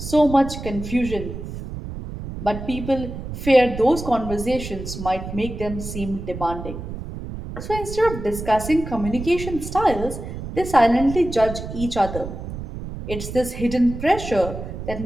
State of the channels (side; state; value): right; noise; rumble, 8 dB below the sound